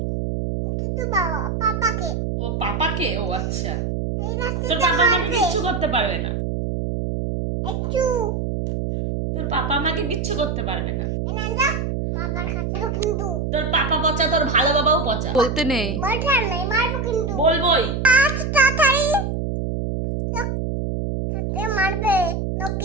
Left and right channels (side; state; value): right; noise; hum, 2 dB below the sound